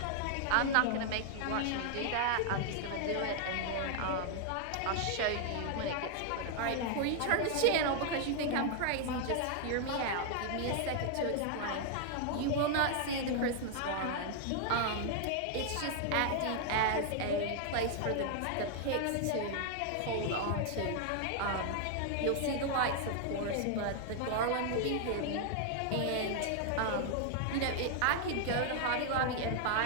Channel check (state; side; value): different; both; correlation 0.00